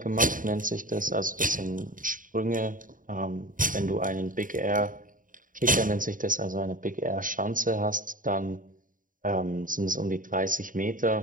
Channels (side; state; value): left; late; 0.39 ms